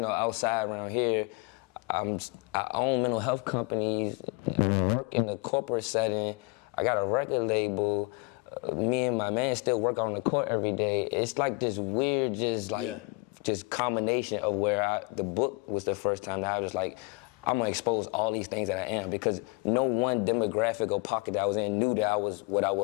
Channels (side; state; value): right; quieter; 28.3 dB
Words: outside around here. I own mental health companies, I work in the corporate setting, I got a record label. Me and my man still work on the court every day. It's like this weird, just combination of where the book was the first time that I was like, I'm gonna expose all these things that I am, because no one demographic or pocket that I was in knew that I was what I